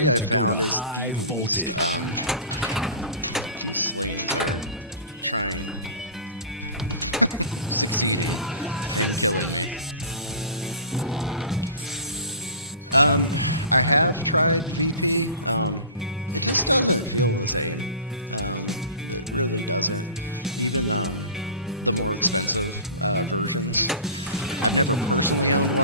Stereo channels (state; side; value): inverted; both; correlation -0.37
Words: I found, is the least, these slings are trying, succeeding, and killing me. I have tried VP, it just doesn't feel the same. It really doesn't. Even, the more expensive, versions. I've never personally owned